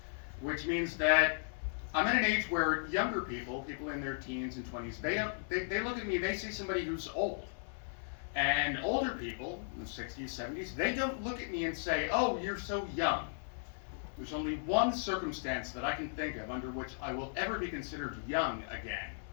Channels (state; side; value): silent; right; 54 dB below the other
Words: which means that I'm at an age where younger people in their teens and 20s, they look at me, they see somebody who's old. And older people, in the 60s, 70s, they don't look at me and say, oh, you're so young. There's only one circumstance that I can think of under which I will ever be considered young again.